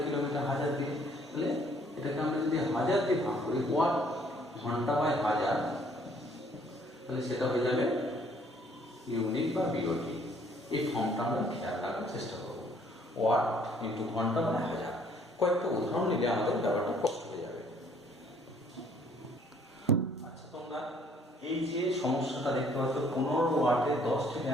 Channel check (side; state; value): both; normal; correlation 0.62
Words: কিলোমিটার? 1000 দিয়ে। তাহলে এটাকে আমরা যদি 1000 দিয়ে ভাগ করি, ওয়াট ঘন্টা বাই 1000, তাহলে সেটা হয়ে যাবে ইউনিট বা বিওটি। এই ফর্মটা আমরা খেয়াল রাখার চেষ্টা করবো, ওয়াট ইন্টু ঘন্টা বাই 1000। কয়েকটা উদাহরণ নিলে আমাদের ব্যাপারটা স্পষ্ট হয়ে যাবে। আচ্ছা, তোমরা এই যে সমস্যাটা দেখতে পাচ্ছ, 15 ওয়াটে 10টি